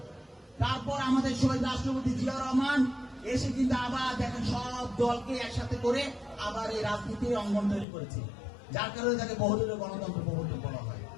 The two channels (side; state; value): right; drops out; at 7.9 s